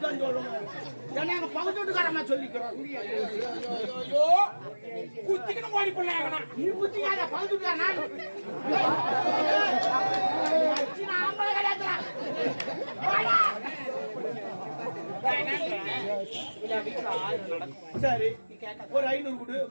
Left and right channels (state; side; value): inverted; both; correlation -1.00